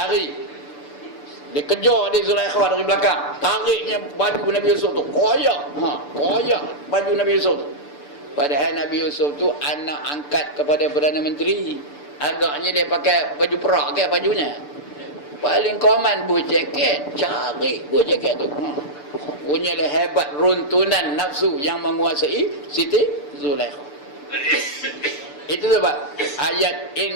Dia kejar dia Zulaikha dari belakang. Tariknya baju Nabi Yusuf tu. Koyak. Koyak baju Nabi Yusuf tu. Padahal Nabi Yusuf tu anak angkat kepada Perdana Menteri. Agaknya dia pakai baju perak ke bajunya. Paling common buah jaket. Cari buah jaket tu. Punyalah hebat runtunan nafsu yang menguasai Siti Zulaikha. Itu sebab ayat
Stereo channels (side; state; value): right; late; 6.8 ms